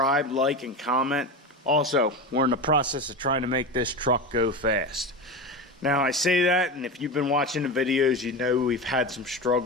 like, and comment. Also, we're in the process of trying to make this truck go fast. Now, I say that, and if you've been watching the videos, you know we've had some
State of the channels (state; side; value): normal; both; correlation 0.23